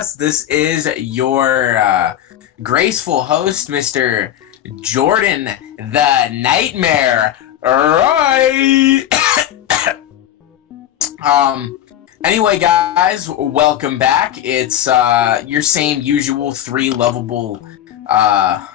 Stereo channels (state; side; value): quieter; right; 11.5 dB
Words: This is your graceful host, Mr. Jordan the Nightmare. Right. Anyway, guys, welcome back. It's your same usual three lovable